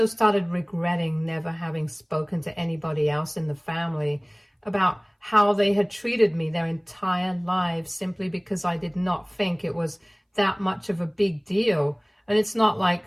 started regretting never having spoken to anybody else in the family about how they had treated me their entire lives simply because I did not think it was that much of a big deal. And it's not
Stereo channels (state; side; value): identical; both; correlation 1.00